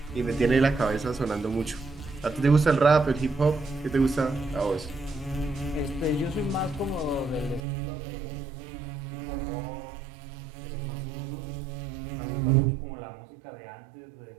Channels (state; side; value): drops out; left; at 7.6 s